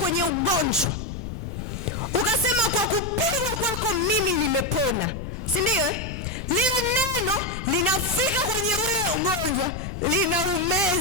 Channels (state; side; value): noise; left; rumble, 7 dB below the sound